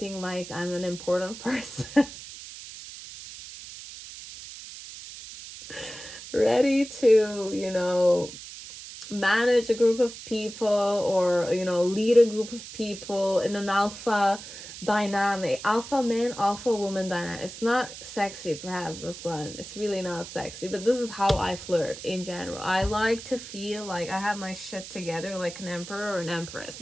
like I'm an important person. Ready to, you know, manage a group of people or, you know, lead a group of people in an alpha dynamic, alpha man, alpha woman dynamic. It's not sexy, perhaps, this one. It's really not sexy, but this is how I flirt in general. I like to feel like I have my shit together like an emperor or an empress,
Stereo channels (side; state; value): right; noise; hiss, 13 dB below the sound